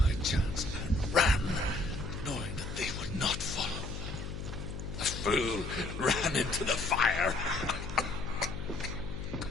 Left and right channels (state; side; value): noise; left; hum, 7 dB below the sound